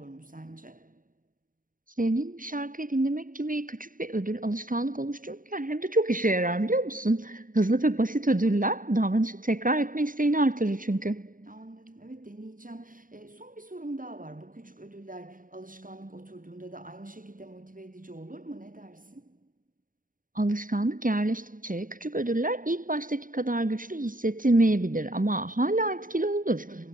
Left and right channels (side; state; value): left; late; 0.39 ms